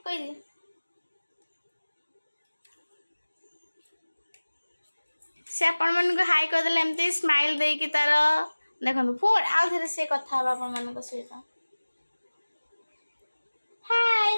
कह दे से आपण मन को हाय कह देले एमती स्माइल दे कि तार देखो फोन आउ थे से कथा आपण मन को सहित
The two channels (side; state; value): both; inverted; correlation -1.00